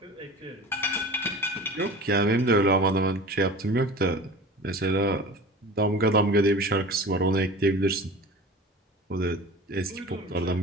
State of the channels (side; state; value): both; normal; correlation 0.37